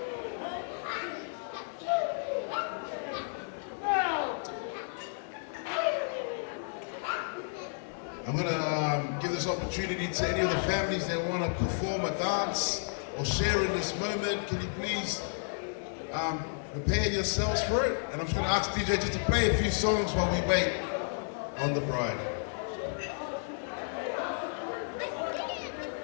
I'm going to give this opportunity to any of the families that want to perform a dance or share in this moment. Can you please prepare yourselves for it? And I'm just going to ask DJ just to play a few songs while we wait on the bride.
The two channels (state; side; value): silent; right; digital silence